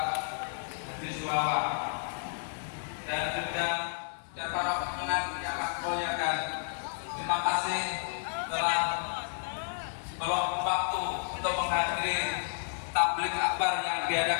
Haji Suwawa dan juga para pemenang yang kami muliakan. Terima kasih telah meluangkan waktu untuk menghadiri tabligh akbar yang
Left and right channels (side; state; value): right; silent; digital silence